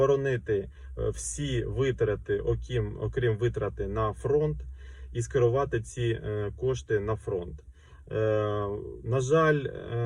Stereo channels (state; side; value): identical; both; correlation 1.00